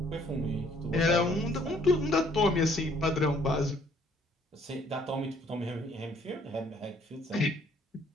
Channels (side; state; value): both; normal; correlation 0.63